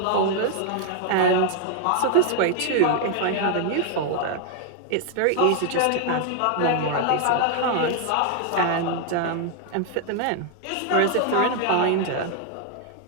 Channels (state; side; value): different; both; correlation 0.00